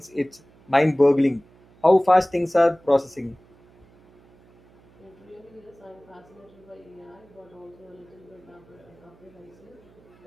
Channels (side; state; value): right; noise; hum, 28 dB below the sound